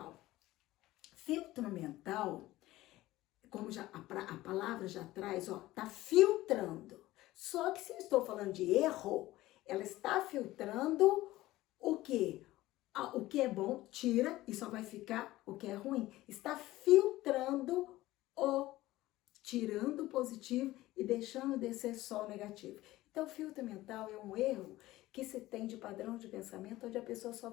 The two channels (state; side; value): quieter; right; 17.0 dB